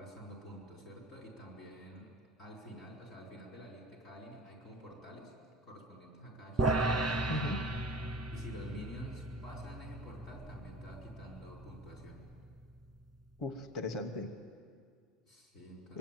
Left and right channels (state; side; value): normal; both; correlation 0.41